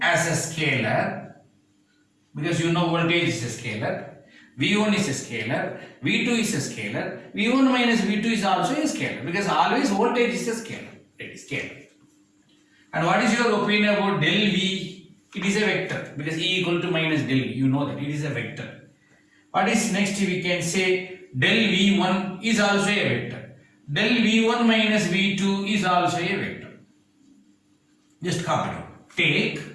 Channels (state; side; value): identical; both; correlation 1.00